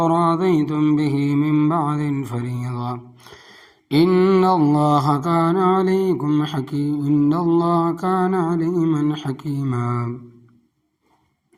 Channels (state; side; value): identical; both; correlation 1.00